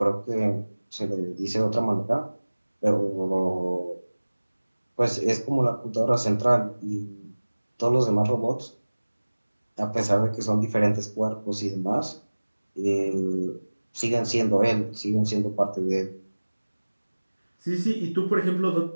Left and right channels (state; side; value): inverted; both; correlation -1.00